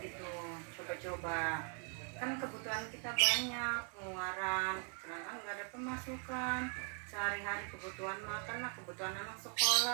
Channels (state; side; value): quieter; left; 38.3 dB